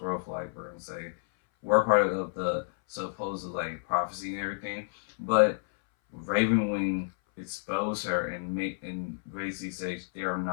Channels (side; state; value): right; silent; 58 dB below the other